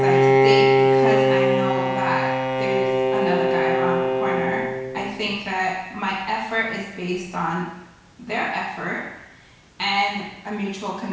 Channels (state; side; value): identical; both; correlation 1.00